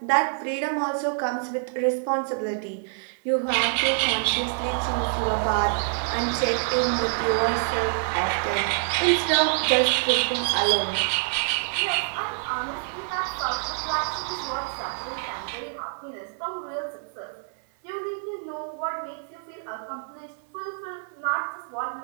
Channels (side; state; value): left; silent; 60 dB below the other